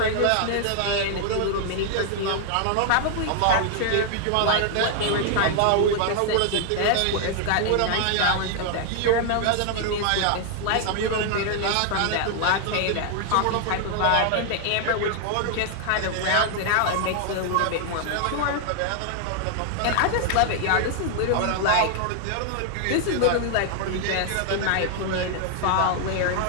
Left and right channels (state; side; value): different; both; correlation 0.00